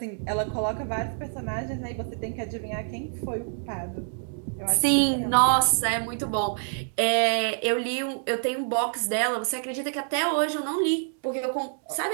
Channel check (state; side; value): silent; left; digital silence